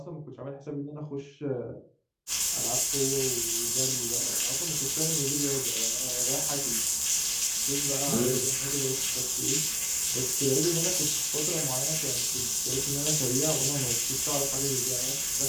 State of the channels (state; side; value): identical; both; correlation 1.00